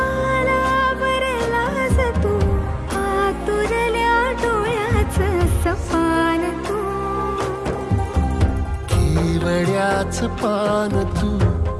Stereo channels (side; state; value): both; identical; correlation 1.00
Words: तू, आतुरल्या डोळ्याचं सपान तू. केवड्याचं पान तू,